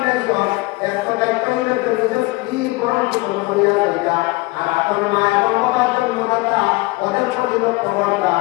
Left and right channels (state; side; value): quieter; right; 22.8 dB